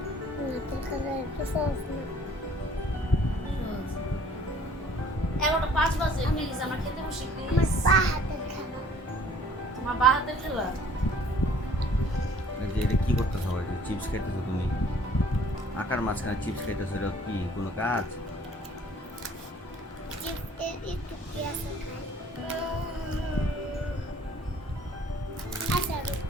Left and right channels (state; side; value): normal; both; correlation 0.55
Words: তাহলে একটু সহজ না। 11:05 বাজে, প্লিজ আমরা খেতে বসি আমার প্লিজ। পা হাতের খেলা। তোমার বা হাতের খেলা। এই যে এটা কি করতেছো? চিপস খাইতেছো তুমি? আকার মাঝখানে চিপস খাইতেছো, এটা কি কোনো কাজ? চিপসের একটু পেঁয়াজ খাই। আচ্ছা রুক।